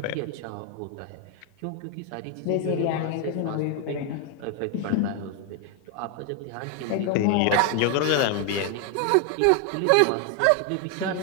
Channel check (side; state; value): both; different; correlation 0.01